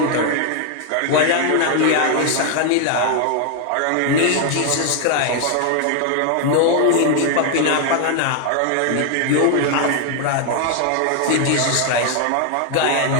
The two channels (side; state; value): both; different; correlation 0.00